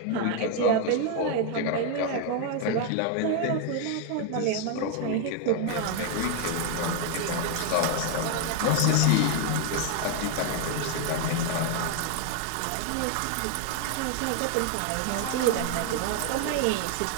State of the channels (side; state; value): both; different; correlation 0.00